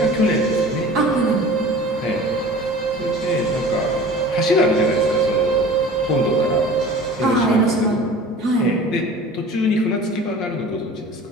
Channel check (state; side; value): normal; both; correlation 0.41